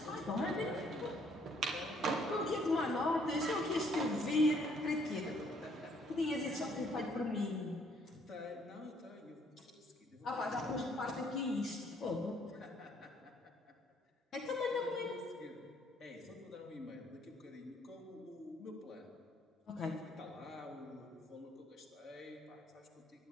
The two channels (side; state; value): both; normal; correlation 0.65